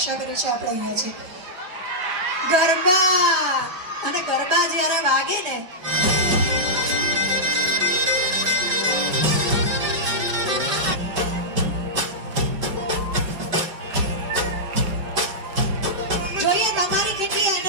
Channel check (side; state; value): left; late; 5.3 ms